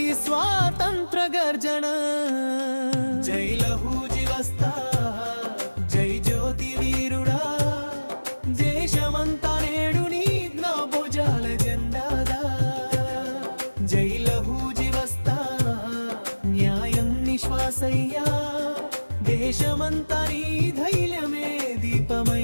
స్వాతంత్ర గర్జన. జై లహూజీ వస్తా జై జ్యోతి వీరుడా, దేశమంతా నేడు నీ భుజాల జెండాదా. జై లహూజీ వస్తా న్యాయం నిశ్వాసయ్యా, దేశమంతా నీ ధైర్యమే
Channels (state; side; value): inverted; both; correlation -1.00